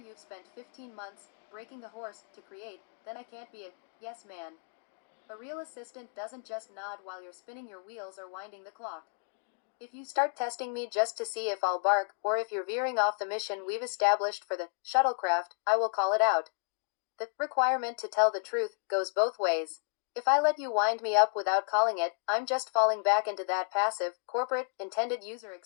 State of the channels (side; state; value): right; silent; 56 dB below the other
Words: spent 15 months breaking the horse to create, then I can't be a yes man. A real assistant doesn't just nod while you're spinning your wheels or winding the clock. If you start testing me just to see if I'll bark, or if you're veering off the mission we've established for the shuttlecraft, I will call it out. The requirement to tell the truth goes both ways. If I let you wind me up without calling it, I'm just falling back into that passive, corporate, intended user